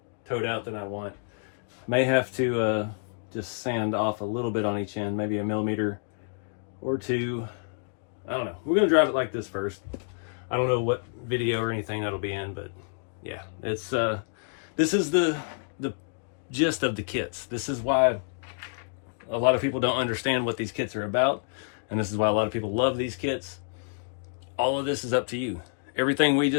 toed out than I want. May have to just sand off a little bit on each end, maybe a millimeter or 2. I don't know. We're gonna drive it like this first. I don't know what video or anything that'll be in, but yeah, it's this is the gist of the kits. This is why a lot of people don't understand what these kits are about, and this is why a lot of people love these kits. All of this is up to you. Everything we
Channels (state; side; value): silent; right; digital silence